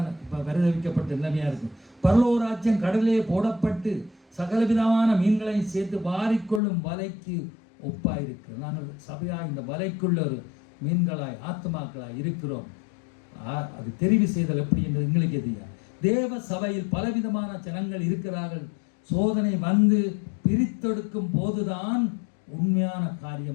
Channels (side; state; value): right; drops out; at 6.6 s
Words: இப்போ பரிதவிக்கப்பட்ட நிலைமையாக இருக்கும். பரலோராஜ்யம் கடலிலே போடப்பட்டு சகலவிதமான மீன்களையும் சேர்த்து வாரிக்கொள்ளும் வலைக்கு ஒப்பாயிருக்கு. நாங்கள் சபையாக இந்த வலைக்குள்ள ஒரு மீன்களாய் ஆத்மாக்களாய் இருக்கிறோம். அது தெரிவு செய்தல் எப்படி என்று எங்களுக்கு எதியா. தேவ சபையில் பலவிதமான ஜனங்கள் இருக்கிறார்கள். சோதனை வந்து பிரித்தெடுக்கும் போதுதான் உண்மையான